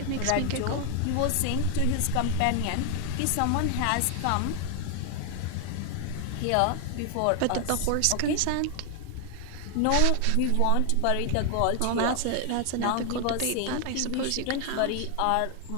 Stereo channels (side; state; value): both; different; correlation 0.00